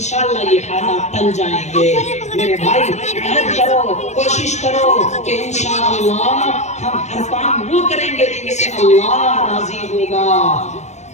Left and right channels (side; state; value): right; late; 0.33 ms